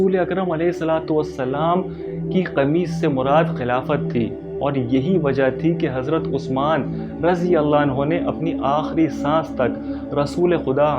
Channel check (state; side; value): identical; both; correlation 1.00